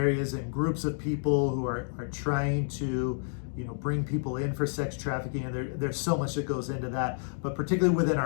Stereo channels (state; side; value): silent; right; digital silence